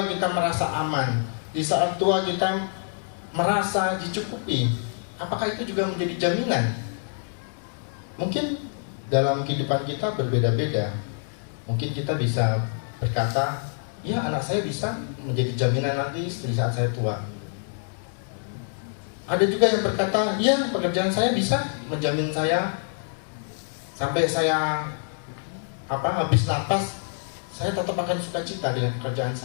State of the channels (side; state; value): right; silent; digital silence